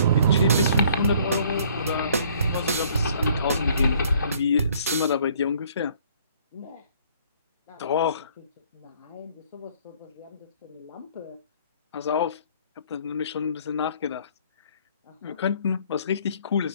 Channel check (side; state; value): both; inverted; correlation -0.59